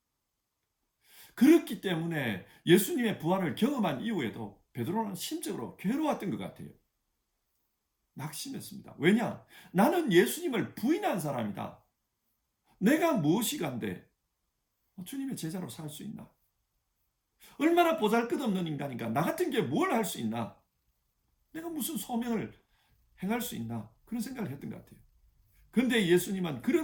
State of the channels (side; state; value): both; identical; correlation 1.00